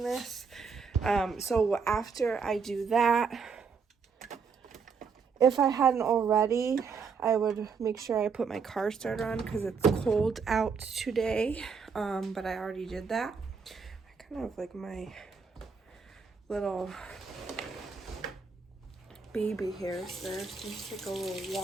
this. So after I do that, if I hadn't already, I would make sure I put my car starter on because it's cold out today. But I already did that. I kind of like my little baby hairs there. So just take a little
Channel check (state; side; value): quieter; left; 5.6 dB